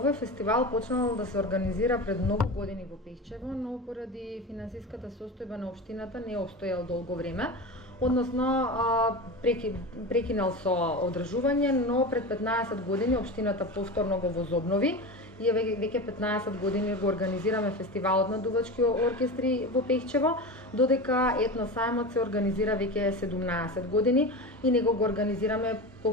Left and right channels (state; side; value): normal; both; correlation 0.26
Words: фестивал почнал да се организира пред многу години во Пехчево, но поради финансиската состојба на општината не обстојал долго време. Односно, прекинал со одржување, но пред 15 години општината повторно го возобнови и веќе 15 години го организираме фестивалот на дувачки оркестри во Пехчево, додека етносајмот се организира веќе 17 години и него го организираме